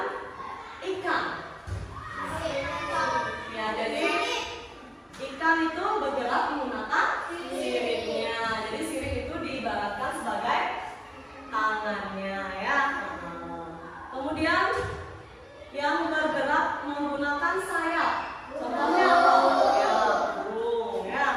ikan. Ya, jadi ikan itu bergerak menggunakan siripnya. Jadi sirip itu diibaratkan sebagai tangannya ya. Kemudian yang bergerak menggunakan sayap. Contohnya apa? Ya, burung ya.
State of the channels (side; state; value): both; identical; correlation 1.00